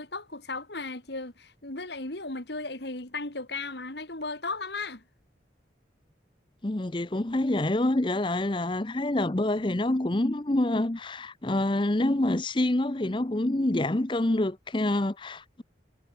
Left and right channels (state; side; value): normal; both; correlation 0.72